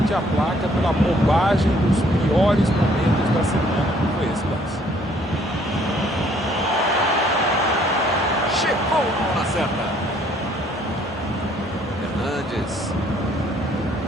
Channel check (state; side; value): normal; both; correlation 0.63